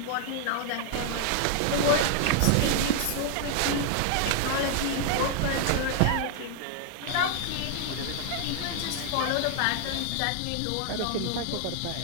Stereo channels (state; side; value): different; both; correlation 0.00